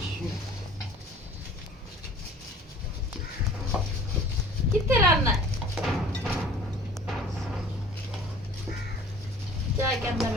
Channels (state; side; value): normal; both; correlation 0.47